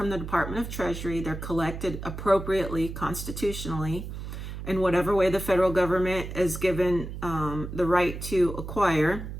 the Department of Treasury. They're collected appropriately, constitutionally, in whatever way the federal government is given the right to acquire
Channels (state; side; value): noise; right; hum, 8 dB below the sound